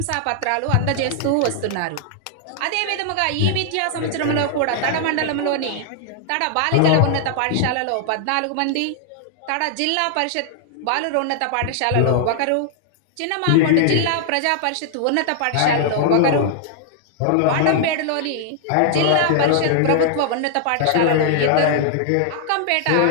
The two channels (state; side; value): different; both; correlation -0.01